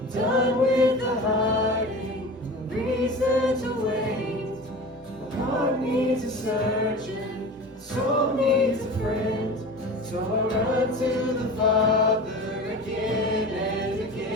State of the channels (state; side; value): normal; both; correlation 0.34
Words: done with the hiding, no reason to wait. My heart needs a surgeon, my soul needs a friend. So I run to the Father again and